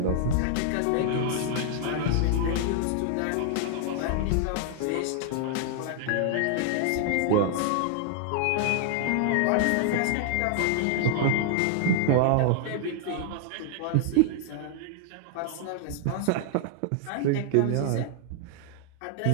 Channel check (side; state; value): both; different; correlation 0.00